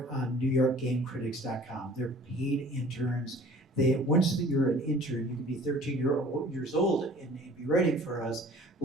on NewYorkGameCritics.com. They're paid interns. Once you're an intern, you can be 13 years old and be writing for us,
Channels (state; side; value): normal; both; correlation 0.49